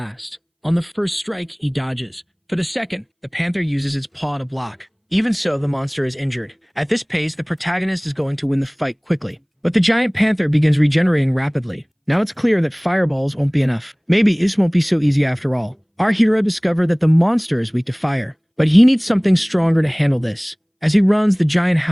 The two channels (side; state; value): both; identical; correlation 1.00